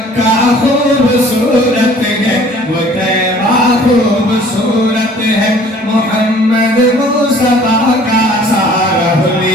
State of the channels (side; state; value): both; normal; correlation 0.52